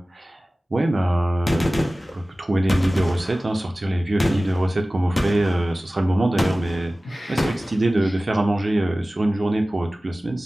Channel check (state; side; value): normal; both; correlation 0.97